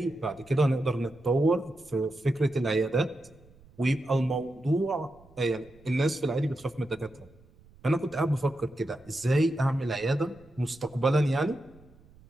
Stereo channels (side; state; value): right; noise; rumble, 26 dB below the sound